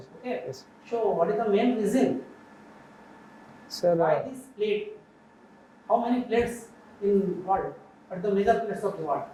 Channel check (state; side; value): identical; both; correlation 1.00